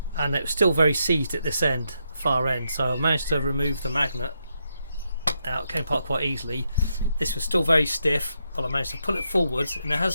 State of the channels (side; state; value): both; inverted; correlation -0.81